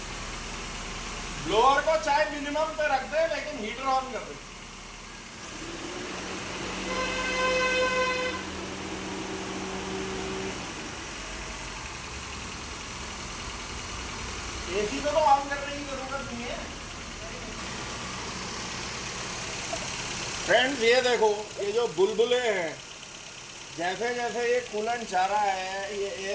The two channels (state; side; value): identical; both; correlation 1.00